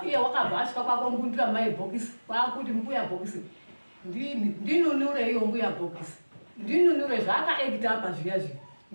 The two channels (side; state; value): both; inverted; correlation -1.00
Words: iye wakabva asvika kwakombundira maibhokisi kwakuti mbuya bhokisi ndinunure iyo mbuya bhokisi ndinunure zvaakaekita apa zviya zviya